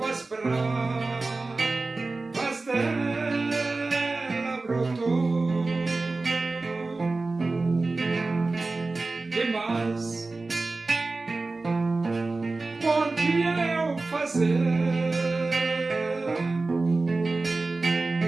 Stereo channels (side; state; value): left; quieter; 3.5 dB